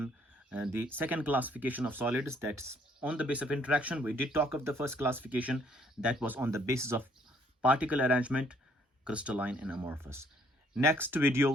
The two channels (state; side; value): normal; both; correlation 0.64